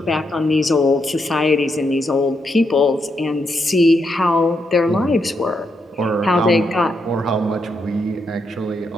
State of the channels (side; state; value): both; normal; correlation 0.81